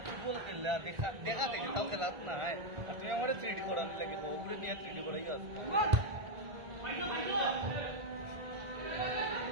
ফুটবল খেললা দেখা দেখি তাও খেলাত না আর তুমি আমারে 3D করার লাগে ওগুলো নিয়ে 3D করাই আছে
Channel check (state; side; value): late; left; 1.5 ms